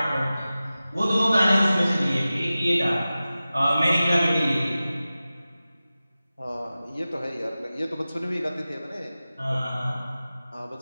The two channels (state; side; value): inverted; both; correlation -0.96